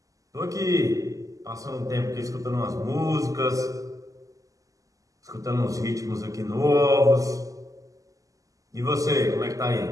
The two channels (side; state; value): left; late; 0.16 ms